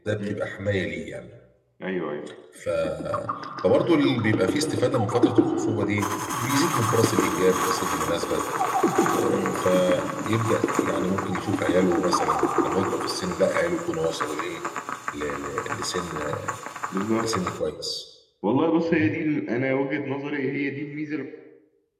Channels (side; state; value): both; identical; correlation 1.00